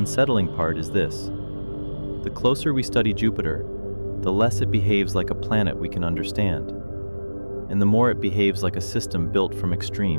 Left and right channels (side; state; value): both; inverted; correlation -1.00